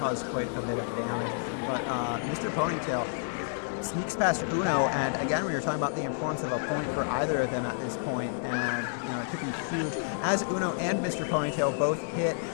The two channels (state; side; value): silent; right; digital silence